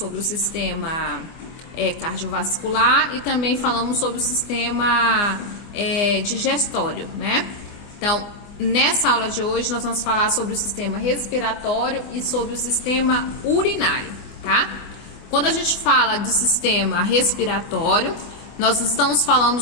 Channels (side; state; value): right; late; 24 ms